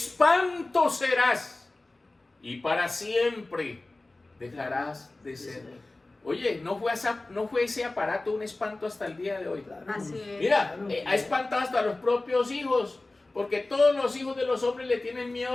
serás y para siempre dejarás de ser. Oye, no fue ese aparato un espanto hasta el día de hoy. Claro. Así es. Mira, Claro. ha espantado hasta los propios hijos, porque todos los hijos de los hombres le tienen miedo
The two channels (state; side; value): quieter; right; 3.0 dB